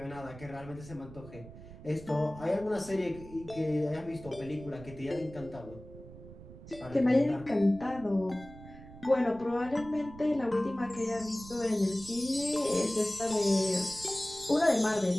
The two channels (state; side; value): noise; right; rumble, 16 dB below the sound